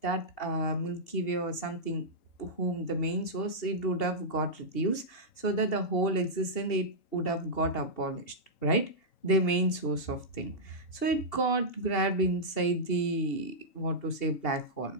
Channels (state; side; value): late; right; 2.7 ms